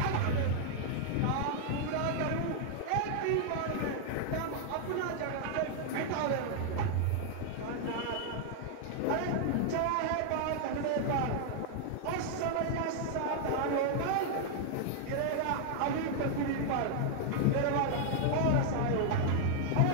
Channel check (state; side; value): different; both; correlation 0.00